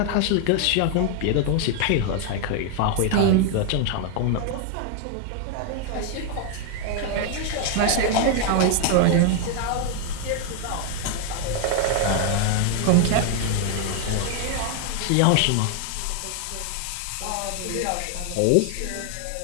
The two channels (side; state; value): both; different; correlation 0.00